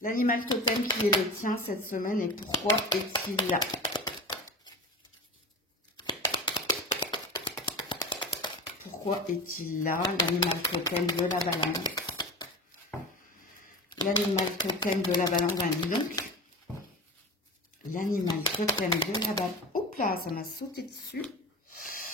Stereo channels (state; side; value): normal; both; correlation 0.30